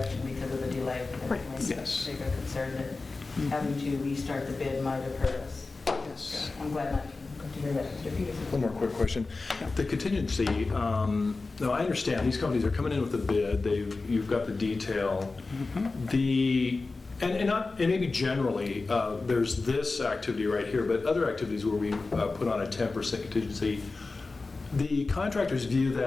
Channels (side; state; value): right; quieter; 3.7 dB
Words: because of the delay. Right. Yes. Bigger concern that having to restart the bid might have hurt us. Yes. I'm glad not to hear that, Mr. Peterson. One more quick question. The contingency, now I understand, these companies are coming in with a bid, you've got the detail. And maybe generally, there's this activity right here, but other activities where we put on a 10% contingency, the contractors view